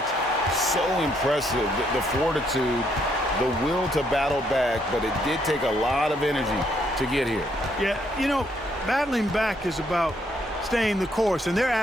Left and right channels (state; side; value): normal; both; correlation 0.72